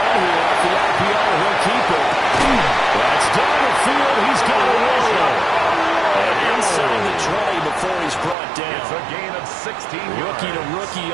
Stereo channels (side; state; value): left; drops out; at 8.3 s